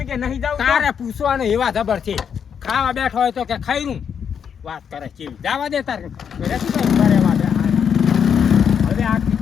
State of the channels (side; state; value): right; quieter; 7.5 dB